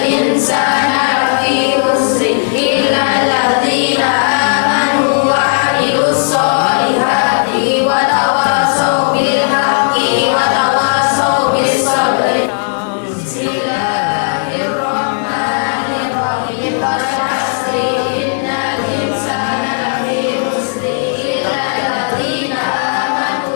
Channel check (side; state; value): right; silent; 68 dB below the other